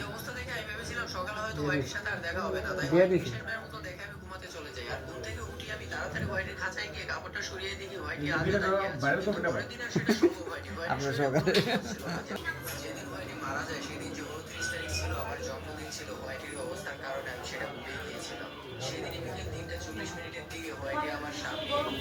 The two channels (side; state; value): both; identical; correlation 1.00